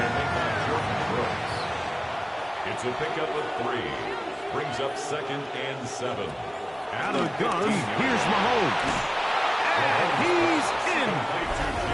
It's a pickup of 3. Brings up second and 7. Out of the gun, here's Mahomes. And he's in.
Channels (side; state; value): both; identical; correlation 1.00